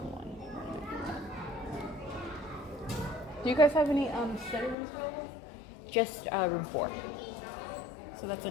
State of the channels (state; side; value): drops out; right; at 4.8 s